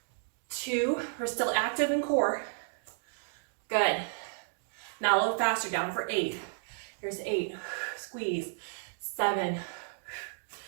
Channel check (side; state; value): left; silent; digital silence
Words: 2. We're still active in core. Good. Now a little faster, down for 8. Here's 8. Squeeze. 7.